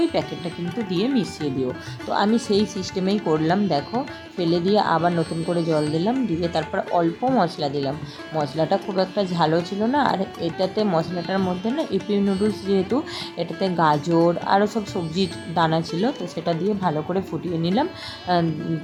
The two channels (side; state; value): both; identical; correlation 1.00